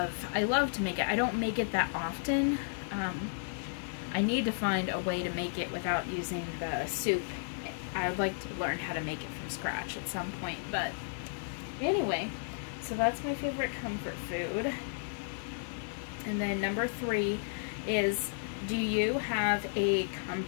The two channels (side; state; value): right; silent; 56 dB below the other